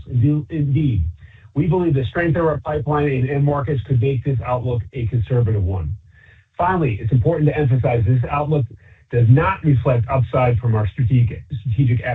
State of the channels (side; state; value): both; identical; correlation 1.00